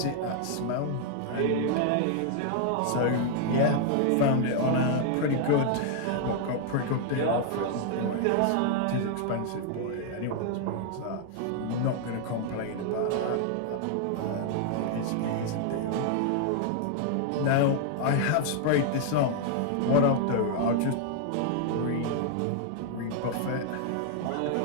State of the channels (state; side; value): different; both; correlation 0.00